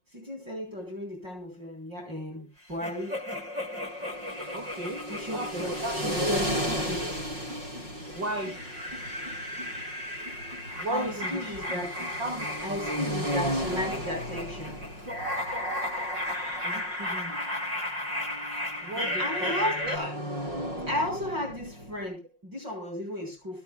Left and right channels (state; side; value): late; left; 5.5 ms